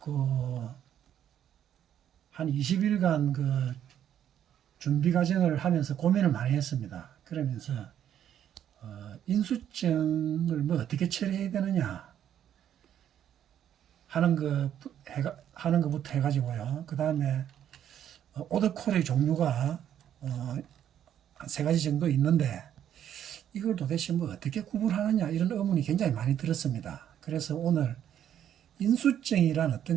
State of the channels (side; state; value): left; quieter; 10.1 dB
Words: 한 20일간 준비 과정을 하면서 고민을 많이 했습니다. 그러면서 인수증을 어떻게 처리해야 되느냐 하는 것부터 해가지고요. 그 다음에 오더콜의 종류가 한 세 가지 정도 있는데 이걸 도대체 어떻게 구분하느냐 이런 의문이 굉장히 많이 들었습니다. 그래서 오늘 인수증이란